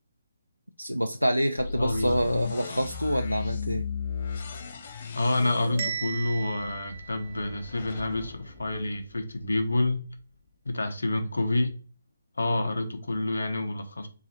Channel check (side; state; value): both; inverted; correlation -0.93